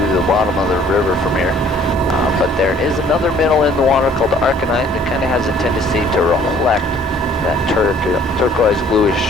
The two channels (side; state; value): both; normal; correlation 0.57